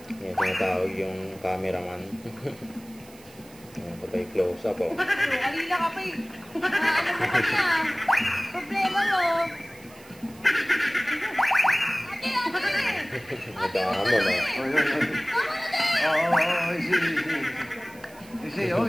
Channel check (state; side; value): noise; right; hiss, 23 dB below the sound